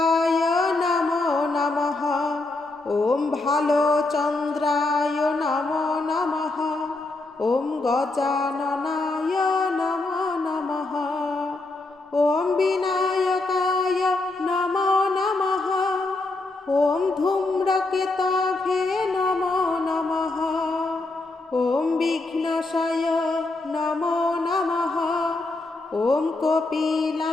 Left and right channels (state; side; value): quieter; right; 3.1 dB